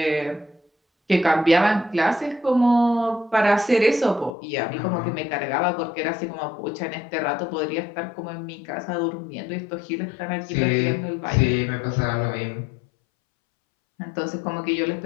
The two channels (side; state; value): right; drops out; at 4.4 s